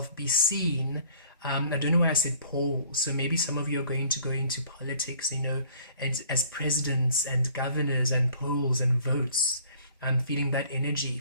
be seen, I don't know why I said poll, so maybe some of you are going to go into politics, and as presidents and governors and polls and votes. I'm feeling that energy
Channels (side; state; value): both; inverted; correlation -0.54